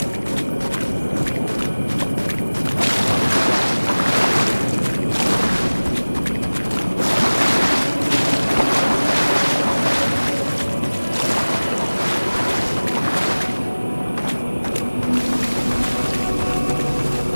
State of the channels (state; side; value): inverted; both; correlation -1.00